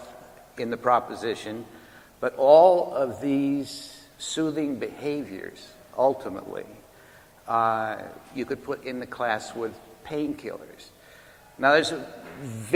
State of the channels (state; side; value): identical; both; correlation 1.00